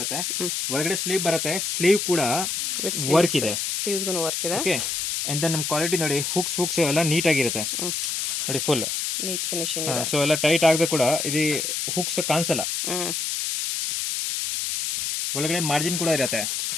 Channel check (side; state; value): left; noise; hiss, 1 dB below the sound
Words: ಒಳಗಡೆ ಸ್ಲೀವ್ ಬರುತ್ತೆ, ಸ್ಲೀವ್ ಕೂಡ ವರ್ಕ್ ಇದೆ, ಸ್ಲೀವ್ಸ್ಗೂ ವರ್ಕ್ ಇದೆ. ಓಕೆ. ಅಂಡ್ ದೆನ್ ನಮ್ಮ ಕ್ವಾಲಿಟಿ ನೋಡಿ, ಹುಕ್ಸ್ ಎಲ್ಲ ನೀಟ್ ಆಗಿರುತ್ತೆ ನೋಡಿ, ಫುಲ್ ನೀಟ್ ಫಿನಿಶಿಂಗ್ ಇದೆ. ಸೊ ಎಲ್ಲ ಟೈಟ್ ಆಗದೆ ಕೂಡ ಇದು ಹುಕ್ಸ್ ಕಾಣಿಸಲ್ಲ. ಒಳಗಡೆ ಮಾರ್ಜಿನ್ ಕೂಡ ಇರುತ್ತೆ.